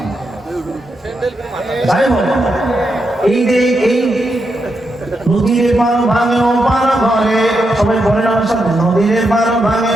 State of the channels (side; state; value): both; normal; correlation 0.84